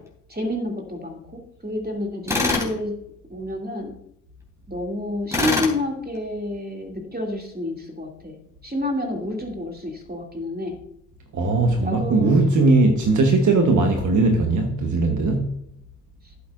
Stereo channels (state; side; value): normal; both; correlation 0.50